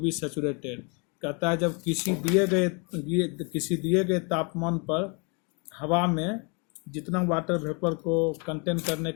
saturated. कहता है जब किसी दिए गए तापमान पर हवा में जितना वाटर वेपर को कंटेन करने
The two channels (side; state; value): right; quieter; 33.9 dB